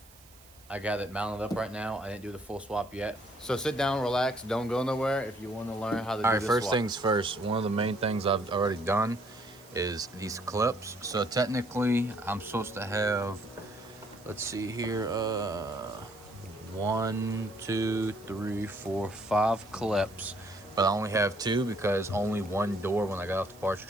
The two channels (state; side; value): noise; right; hiss, 25 dB below the sound